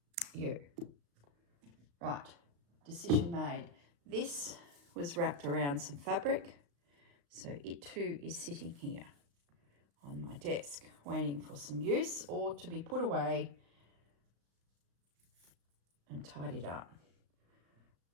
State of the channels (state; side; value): late; left; 35 ms